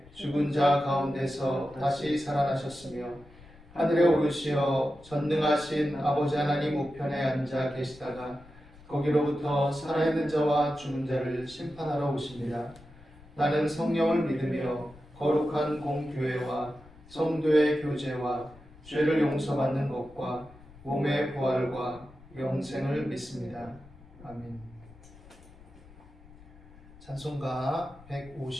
죽은 자 가운데서 다시 살아나셨으며 하늘에 오르시어 전능하신 아버지 하나님 우편에 앉아 계시다가 거기로부터 살아있는 자와 죽은 자를 심판하러 오십니다. 나는 성령을 믿으며 거룩한 공교회와 성도의 교제와 죄를 용서받는 것과 몸의 부활과 영생을 믿습니다. 아멘. 찬송가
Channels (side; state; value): left; noise; rumble, 22 dB below the sound